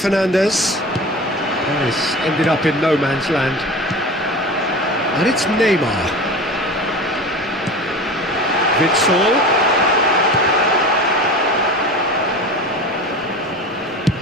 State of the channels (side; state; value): both; normal; correlation 0.33